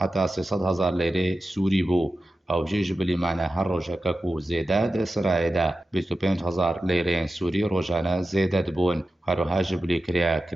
300 هزار لەیرێ سووری بوو ئەو ژێژ بلیمانە هەر ڕۆژەکە و زێدا دە سرایەدا 25 هزار لەیرێن سووری ڕۆژانە زێدە دەبوون هەروەها ژ بلی کریا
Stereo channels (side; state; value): both; normal; correlation 0.93